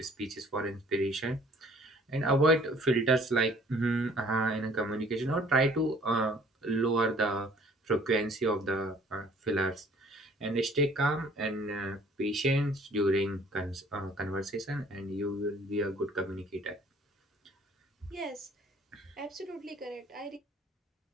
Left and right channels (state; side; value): normal; both; correlation 0.56